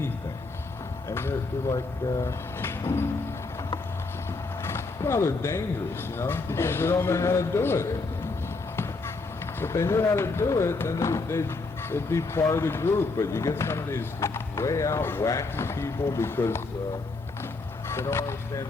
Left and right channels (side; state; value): right; quieter; 3.7 dB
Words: And they're like, well, they're dangerous, you know, because they don't know how to do it. If they knew how to do it, then they'd be part of the group. But you get some of these way out wacky people because they don't understand